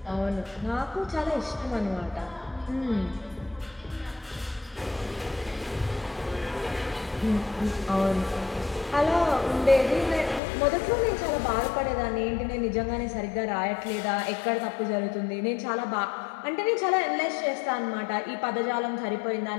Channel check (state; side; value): drops out; right; at 10.4 s